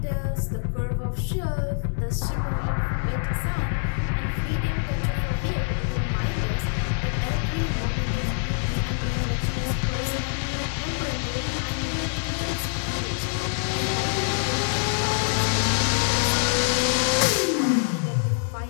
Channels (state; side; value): silent; right; digital silence